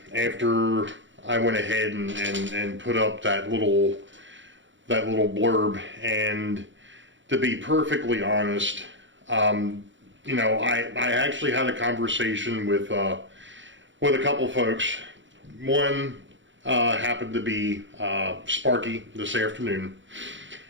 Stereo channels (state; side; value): late; left; 0.55 ms